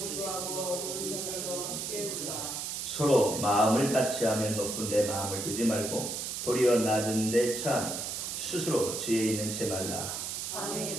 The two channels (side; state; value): right; noise; hiss, 4 dB below the sound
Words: 서로 마음을 같이 하며 높은 데 마음을 두지 말고 도리어 낮은 데 처하며 스스로 지혜 있는 채 말라.